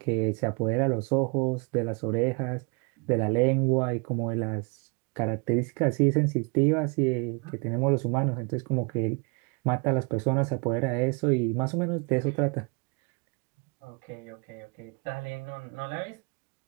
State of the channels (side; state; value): left; quieter; 33.4 dB